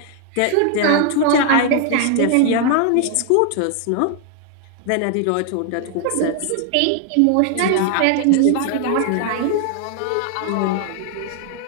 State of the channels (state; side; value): different; both; correlation 0.00